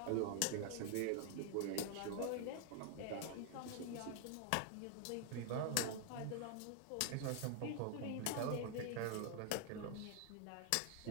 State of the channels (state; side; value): different; both; correlation 0.00